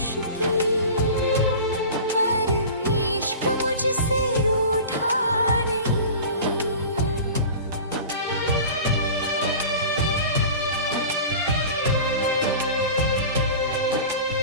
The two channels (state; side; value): inverted; both; correlation -0.36